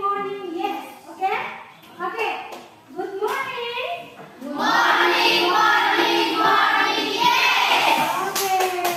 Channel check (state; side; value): identical; both; correlation 1.00